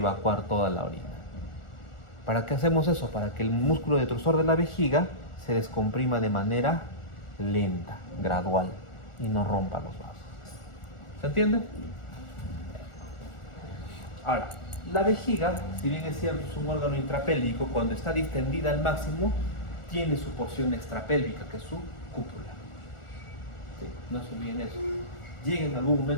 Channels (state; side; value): late; right; 1.4 ms